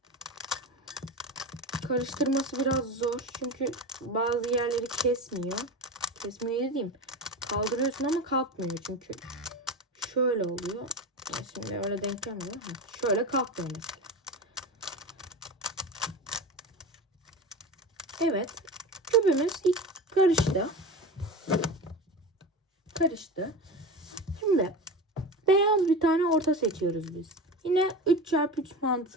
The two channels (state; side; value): normal; both; correlation 0.27